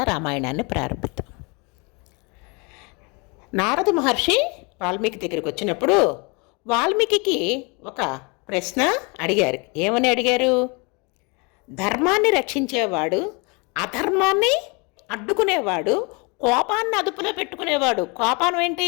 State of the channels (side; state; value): right; quieter; 30.4 dB